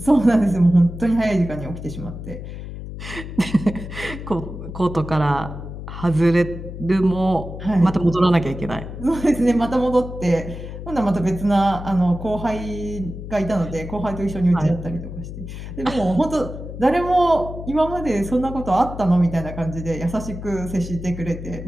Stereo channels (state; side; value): noise; left; hum, 10 dB below the sound